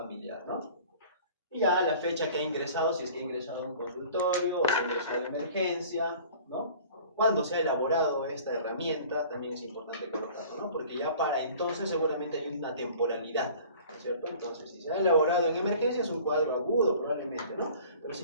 ¿no? Y ya la fecha que ha ingresado, si es que ha ingresado a un consultorio o si ha ingresado a emergencia, ¿no? Cuando se ha elaborado esta herramienta, también es importante colocarlo, ¿no?, porque ya para entonces seguramente hay una temporalidad, ¿no es cierto? Entonces, si se ha elaborado en emergencia es un cuadro agudo probablemente, ¿no? Pero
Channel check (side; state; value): both; inverted; correlation -0.46